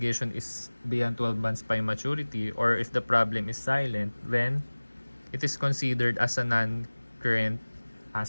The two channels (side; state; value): both; inverted; correlation -1.00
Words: is beyond 12 months by maturity, or if the problem is silent, then it is considered as a non-current